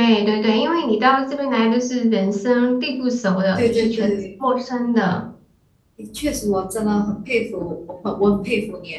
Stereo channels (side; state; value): both; identical; correlation 1.00